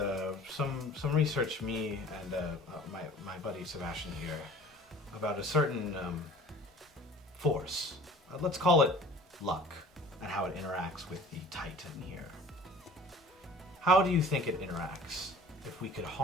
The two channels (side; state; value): both; normal; correlation 0.46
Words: some research me and my buddy Sebastian here about a certain force. Let's call it luck, and how it interacts with the Titan here. How do you think it interacts if we could